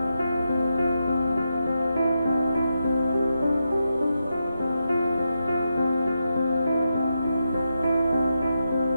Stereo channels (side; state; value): both; inverted; correlation -0.86